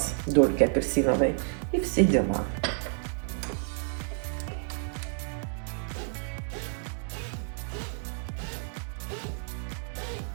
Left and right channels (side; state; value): left; silent; 58 dB below the other